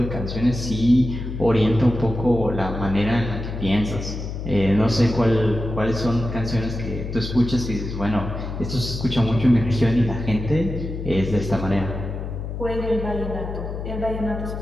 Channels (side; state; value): left; noise; hum, 6 dB below the sound